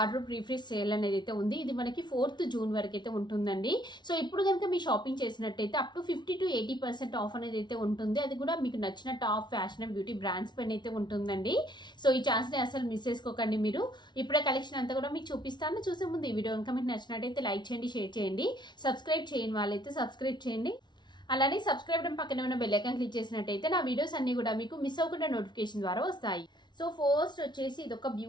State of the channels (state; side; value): late; right; 0.21 ms